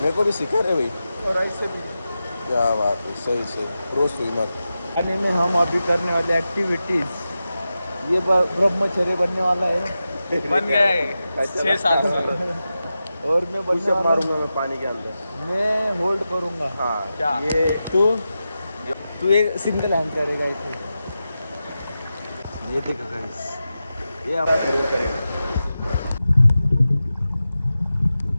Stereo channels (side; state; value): both; inverted; correlation -0.92